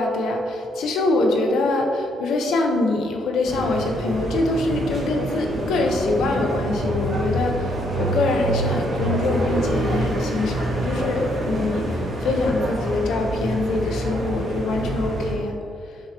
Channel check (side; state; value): both; normal; correlation 0.72